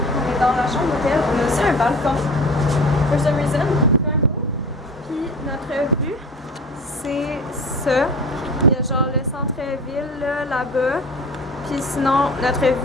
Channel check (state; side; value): normal; both; correlation 0.38